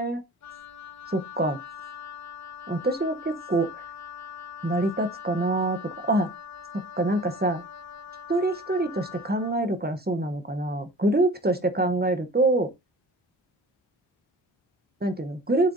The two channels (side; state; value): both; normal; correlation 0.43